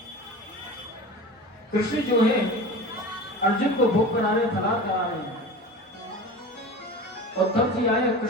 कृष्ण जो है अर्जुन को भोग करा रहे, फलार करा रहे हैं। उद्धव जी आए,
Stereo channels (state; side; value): normal; both; correlation 0.34